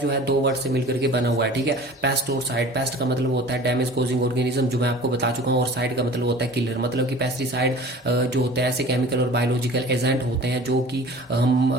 है 2 वर्ड से मिलकर के बना हुआ है। ठीक है, पेस्ट और साइड, पेस्ट का मतलब होता है डैमेज कोजिंग ऑर्गेनिज्म, जो मैं आपको बता चुका हूँ, और साइड का मतलब होता है किलर। मतलब कि पेस्टिसाइड जो होते हैं ऐसे केमिकल और बायोलॉजिकल एजेंट होते हैं जो कि हम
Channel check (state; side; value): normal; both; correlation 0.43